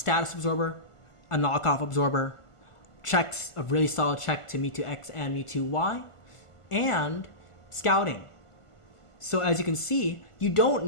absorber, a knockoff absorber, checks, a really solid check to Mewtwo X and Mewtwo Y, and scouting. So as you can see, you don't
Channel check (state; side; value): late; right; 1.5 ms